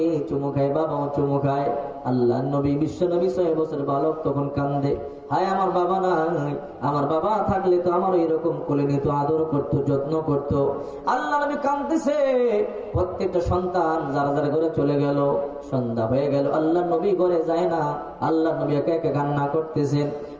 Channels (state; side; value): identical; both; correlation 1.00